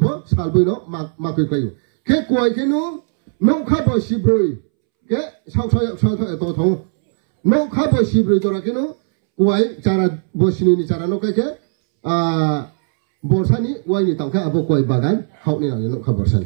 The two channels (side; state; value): left; silent; 67 dB below the other